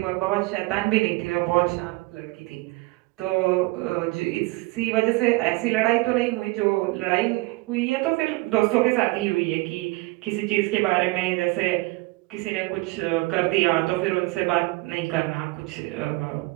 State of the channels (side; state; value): left; quieter; 22.7 dB